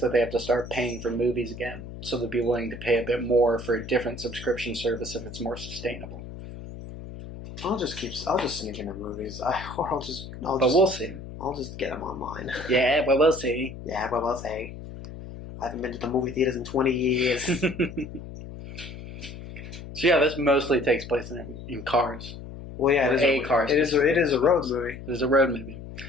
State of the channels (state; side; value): noise; left; hum, 12 dB below the sound